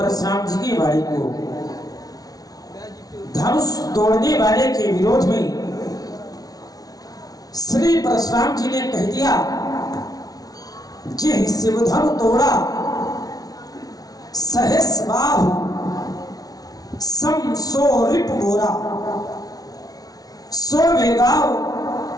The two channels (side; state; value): right; late; 0.18 ms